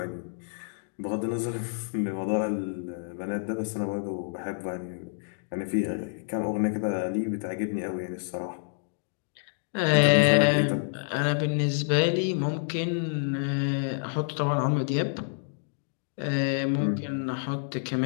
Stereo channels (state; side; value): silent; right; digital silence